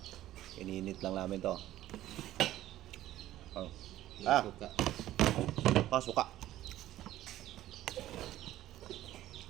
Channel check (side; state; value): left; quieter; 14.0 dB